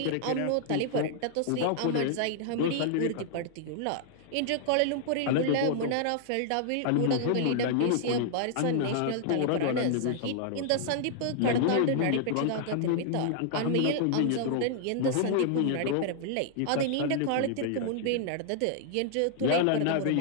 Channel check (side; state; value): both; different; correlation -0.01